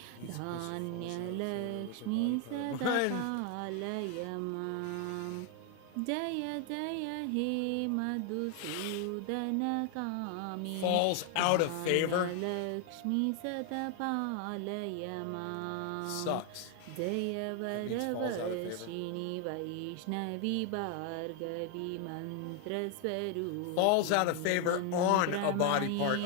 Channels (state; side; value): different; both; correlation 0.01